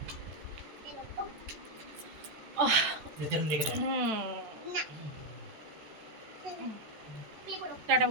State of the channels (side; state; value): left; late; 14 ms